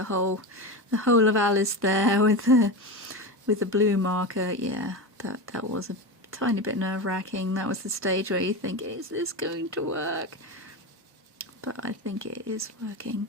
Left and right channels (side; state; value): both; normal; correlation 0.21